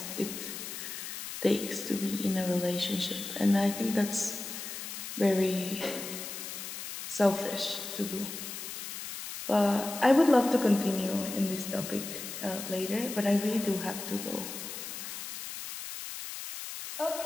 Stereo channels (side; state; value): left; noise; hiss, 8 dB below the sound